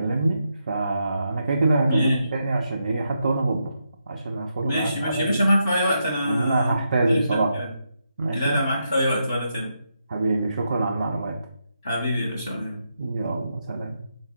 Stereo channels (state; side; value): inverted; both; correlation -0.83